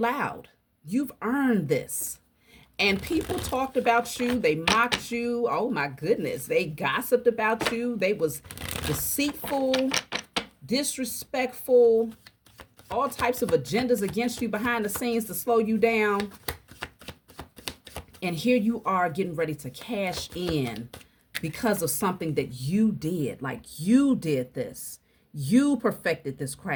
You've earned this. And people talked about you. They mocked you. Oh, my goodness. They gossiped about you. They was deceitful, disrespectful, all types of agendas against you behind the scenes to slow you down. And here you are getting ready to cash in because of something that you did. Like you did this. You perfected this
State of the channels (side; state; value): both; identical; correlation 1.00